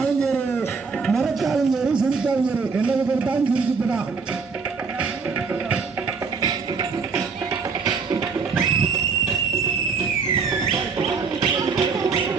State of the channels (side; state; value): left; quieter; 5.2 dB